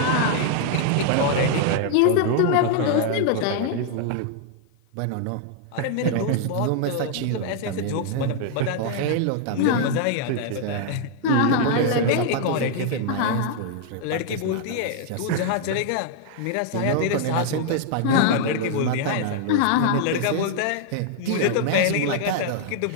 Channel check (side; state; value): both; different; correlation 0.00